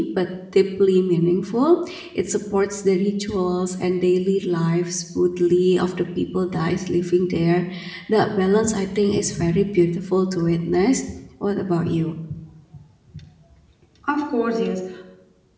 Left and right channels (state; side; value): identical; both; correlation 1.00